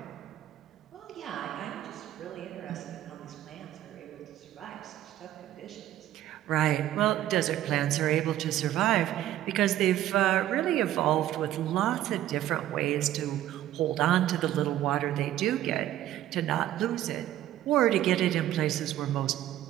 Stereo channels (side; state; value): left; quieter; 13.1 dB